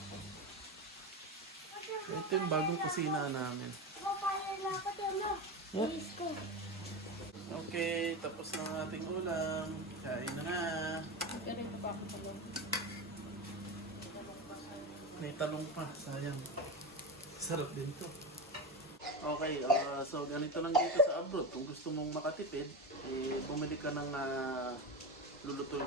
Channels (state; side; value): normal; both; correlation 0.20